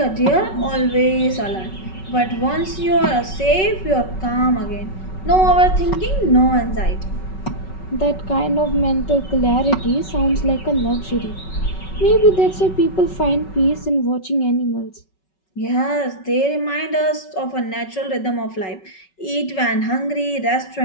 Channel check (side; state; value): right; late; 5.3 ms